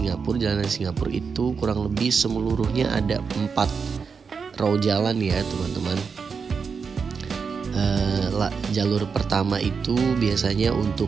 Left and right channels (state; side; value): quieter; left; 5.6 dB